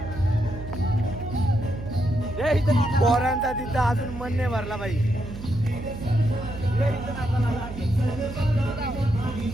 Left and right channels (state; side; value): noise; right; hum, 11 dB below the sound